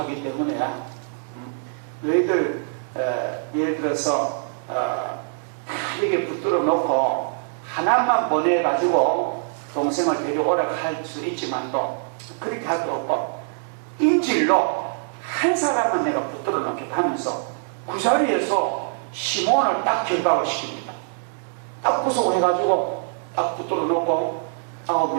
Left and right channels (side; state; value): left; silent; digital silence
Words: 때문에 너희들 예를 들어서 이렇게 붙들어 놓고 하나만 보내가지고 동생을 데려오라 할 수 있지만도 그렇게 할 수 없고 인질로 한 사람은 내가 붙들어 놓겠다 하면서 그 자리에서 시몬을 딱 결박을 시킵니다. 딱 구속해가지고 딱 붙들어 놓고